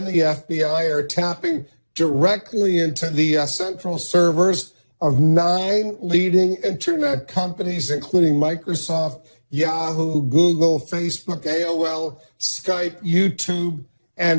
the FBI are tapping directly into the central servers of 9 leading internet companies, including Microsoft, Yahoo, Google, Facebook, AOL, Skype, YouTube,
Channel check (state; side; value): inverted; both; correlation -1.00